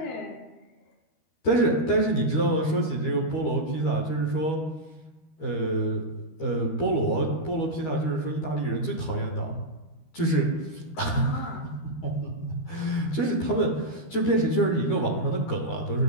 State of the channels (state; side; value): late; right; 13 ms